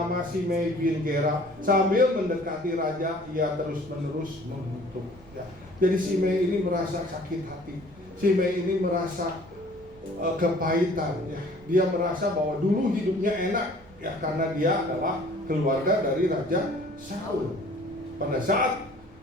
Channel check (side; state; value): right; noise; rumble, 24 dB below the sound